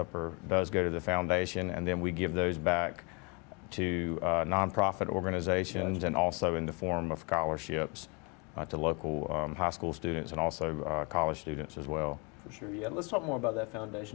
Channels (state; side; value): quieter; right; 32.0 dB